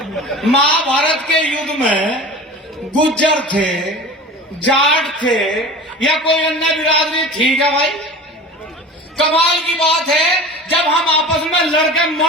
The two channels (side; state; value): both; normal; correlation 0.36